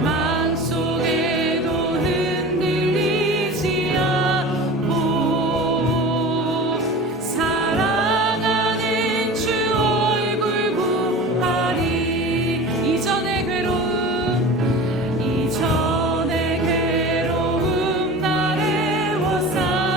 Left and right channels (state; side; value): normal; both; correlation 0.35